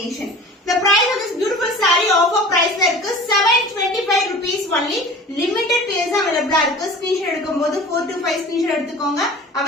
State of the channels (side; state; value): both; normal; correlation 0.40